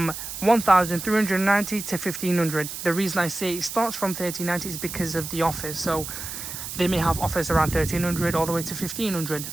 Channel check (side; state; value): right; noise; hiss, 8 dB below the sound